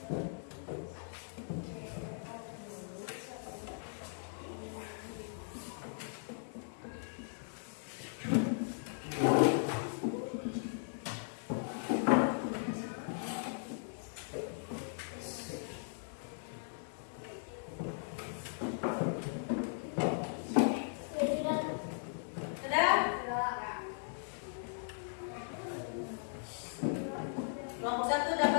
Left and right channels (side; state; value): right; silent; digital silence